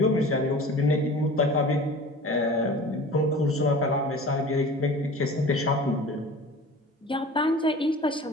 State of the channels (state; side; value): normal; both; correlation 0.40